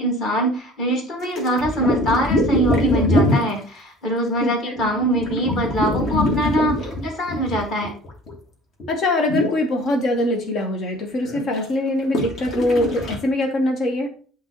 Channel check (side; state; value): both; normal; correlation 0.48